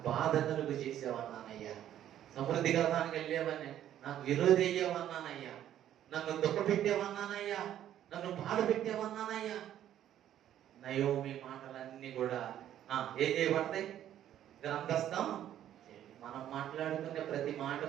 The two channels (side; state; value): left; quieter; 11.3 dB